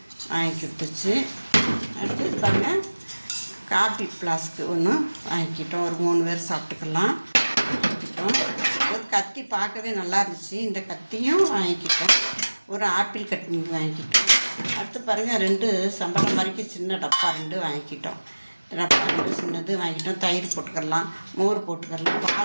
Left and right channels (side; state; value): both; inverted; correlation -1.00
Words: வாங்கி விட்டுச்சு. அடுத்து பாருங்கள், காப்பி ஃப்ளாஸ்க்கு ஒன்று வாங்கிக்கிட்டோம். ஒரு 3 பேர் சாப்பிட்டுக்கலாம் வாங்கிக்கிட்டோம். ஒரு கத்தி பார்க்கவே நல்லா இருந்துச்சு. இந்த கத்தியும் வாங்கிக்கிட்டோம். ஒரு ஆப்பிள் கட்டி வாங்கிக்கிட்டோம். அடுத்து பாருங்கள், 2 சம்பளம் மாதிரிக்கு சின்ன டப்பா 2 வாங்கிக்கிட்டோம். டப்பா 2 சின்னது வாங்கிக்கிட்டோம். தயிர் போட்டுக்கலாம், மோர் போட்டுக்கலாம்,